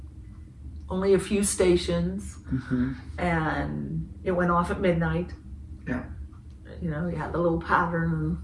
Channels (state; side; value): identical; both; correlation 1.00